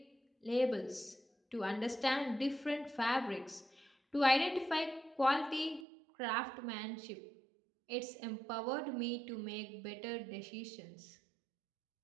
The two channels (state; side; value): drops out; left; at 5.9 s